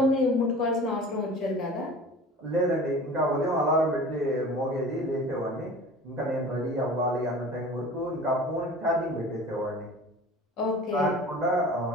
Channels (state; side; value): normal; both; correlation 0.40